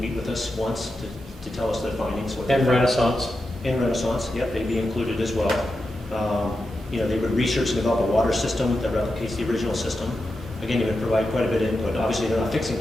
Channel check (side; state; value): both; normal; correlation 0.89